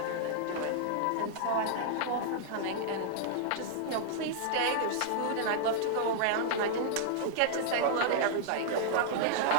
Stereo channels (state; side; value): different; both; correlation -0.01